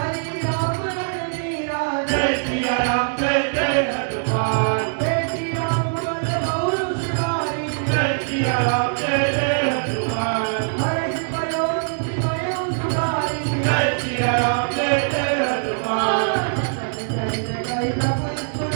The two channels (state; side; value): silent; left; digital silence